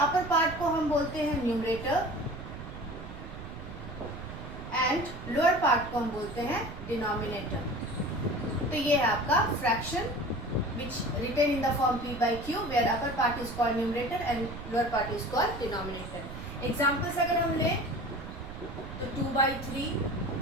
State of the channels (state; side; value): noise; right; rumble, 11 dB below the sound